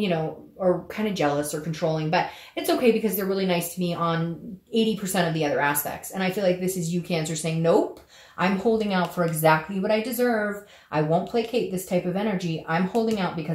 know, are kind of jealous or controlling, but it's okay because they're really nice to me on 80% of the other aspects. And I feel like this is you, Cancer, saying, nope, I'm holding out for exactly what I deserve. I won't placate this type of energy. I'm holding out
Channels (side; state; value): both; identical; correlation 1.00